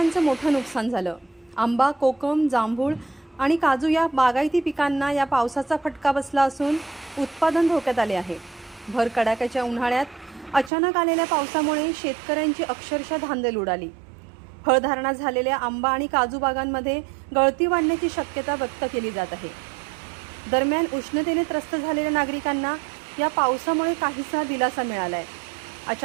मोठं नुकसान झालं। आंबा, कोकम, जांभूळ आणि काजू या बागायती पिकांना या पावसाचा फटका बसला असून उत्पादन धोक्यात आले आहे। भर कडाक्याच्या उन्हाळ्यात अचानक आलेल्या पावसामुळे शेतकऱ्यांची अक्षरशः धांदल उडाली। फळधारणा झालेल्या आंबा आणि काजू बागांमध्ये गळती वाढण्याची शक्यता व्यक्त केली जात आहे। दरम्यान उष्णतेने त्रस्त झालेल्या नागरिकांना या पावसामुळे काहीसा दिलासा मिळालाय।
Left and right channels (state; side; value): drops out; left; at 10.7 s